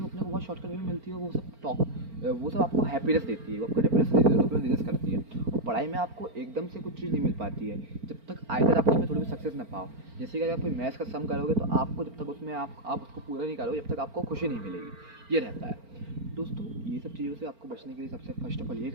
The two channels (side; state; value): left; late; 4.4 ms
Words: वो अपने को बहुत शॉर्टकट वे में मिलती है। वो सब आपको हैप्पीनेस देती है, वो आपको हैप्पीनेस देती है, डोपामिन रिलीज करती है। और पढ़ाई में आपको एकदम से कुछ चीज़ नहीं मिल पाती है जब तक आइदर आप उसमें थोड़ी भी सक्सेस ना पाओ। जैसे कि अगर आप कोई मैथ्स का सम करोगे तो आपको जब तक उसमें आप उसको पूरा नहीं करोगे, जब तक आपको खुशी नहीं मिलेगी। ये रहता है दोस्तों। ये सब चीज़ों से आपको बचने के लिए सबसे फर्स्ट ऑफ ऑल ये